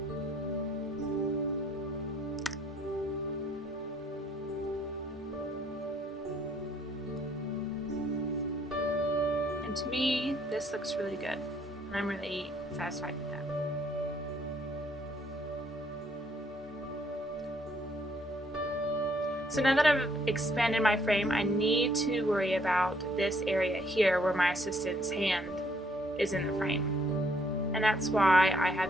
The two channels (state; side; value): normal; both; correlation 0.67